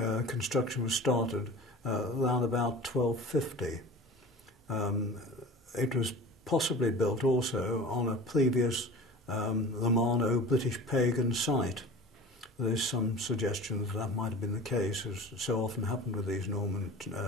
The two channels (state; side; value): normal; both; correlation 0.38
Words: construction was started around about 1250. It was possibly built also on a previous Romano British pagan site. There is some suggestion that that might have been the case, as so often happened with these Norman